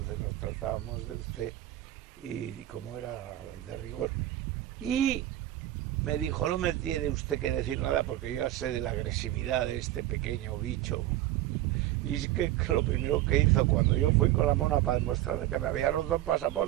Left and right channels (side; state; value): left; quieter; 14.5 dB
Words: nos tratábamos de usted y como era de rigor. Y me dijo, no me tiene usted que decir nada porque yo ya sé de la agresividad de este pequeño bicho. Y es que lo primero que hizo cuando yo fui con la mona para demostrarle que me había roto el